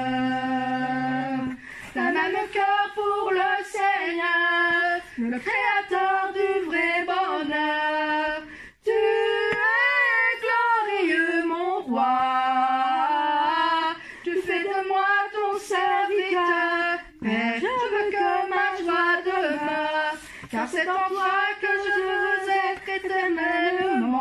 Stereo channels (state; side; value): identical; both; correlation 1.00